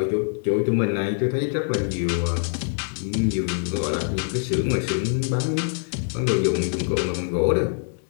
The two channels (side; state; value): right; silent; digital silence